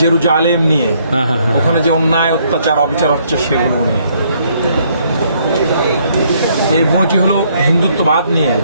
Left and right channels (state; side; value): inverted; both; correlation -0.68